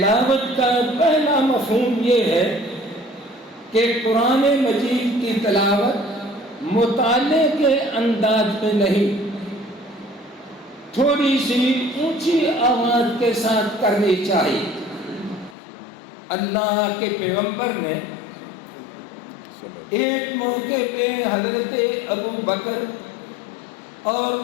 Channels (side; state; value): right; drops out; at 15.6 s